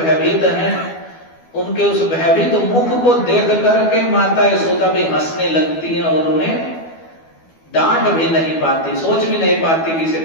हैं, उनके उस भयभीत मुख को देख करके माता यशोदा भी हंसने लगती हैं और उन्हें डांट भी नहीं पाती, सोच भी नहीं पाती कि इसे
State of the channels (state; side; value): late; right; 12 ms